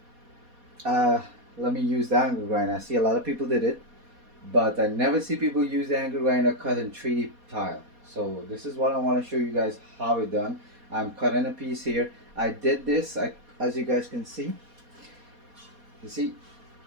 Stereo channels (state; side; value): late; left; 4.2 ms